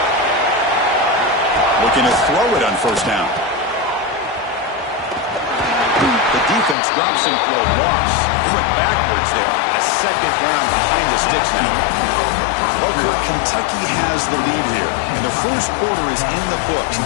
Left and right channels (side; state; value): right; drops out; at 6.8 s